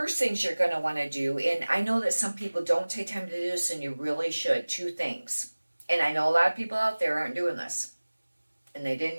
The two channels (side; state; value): both; inverted; correlation -1.00